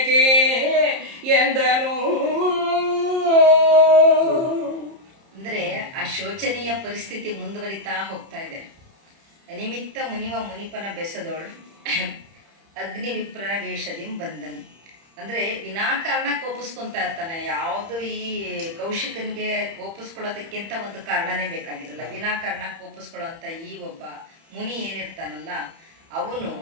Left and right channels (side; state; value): left; late; 30 ms